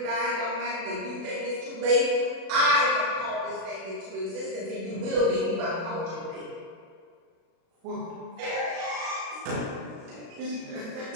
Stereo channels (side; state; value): left; late; 36 ms